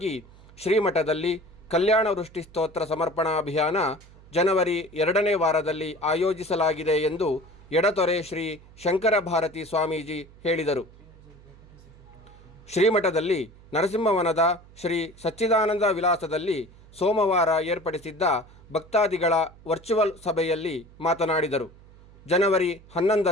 ಶ್ರೀಮಠದಲ್ಲಿ ಕಲ್ಯಾಣ ವೃಷ್ಟಿ ಸ್ತೋತ್ರ ಸಮರ್ಪಣಾ ಅಭಿಯಾನ ಜನವರಿ 2ನೇ ವಾರದಲ್ಲಿ ಆಯೋಜಿಸಲಾಗಿದೆ ಎಂದು ಎಡತೊರೆ ಶ್ರೀ ಶಂಕರ ಭಾರತಿ ಸ್ವಾಮೀಜಿ ಹೇಳಿದರು. ಶ್ರೀಮಠದಲ್ಲಿ ನರಸಿಂಹವನದ ಶ್ರೀ ಸಚ್ಚಿದಾನಂದ ವಿಲಾಸದಲ್ಲಿ ಸೋಮವಾರ ಏರ್ಪಡಿಸಿದ್ದ ಭಕ್ತಾದಿಗಳ ವರ್ಚುವಲ್ ಸಭೆಯಲ್ಲಿ ಮಾತನಾಡಿದರು. ಜನವರಿ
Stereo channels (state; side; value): noise; right; hum, 23 dB below the sound